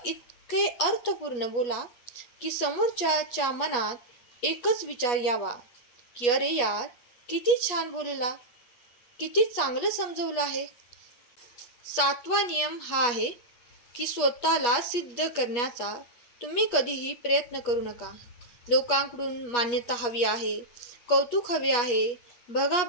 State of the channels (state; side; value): late; right; 8.3 ms